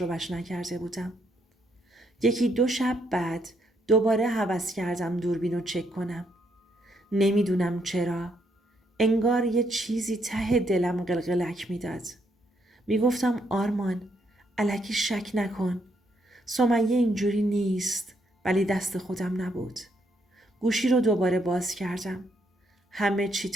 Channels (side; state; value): both; normal; correlation 0.74